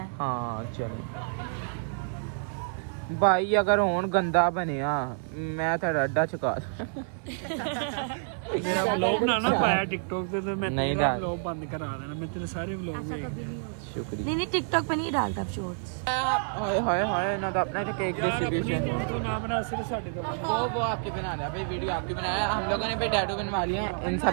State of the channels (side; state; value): left; silent; 57 dB below the other